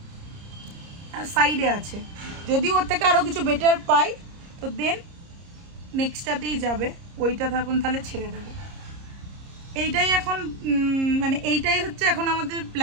সাইডে আছে। যদি ওর থেকে আরও কিছু বেটার পাই তো দেন নেক্সটটাতেই যাবে, ওইটা থাকুন তাহলে ছেড়ে দেবো। এইটাই এখন মানে এইটাই হচ্ছে এখন আমাদের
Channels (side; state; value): left; late; 30 ms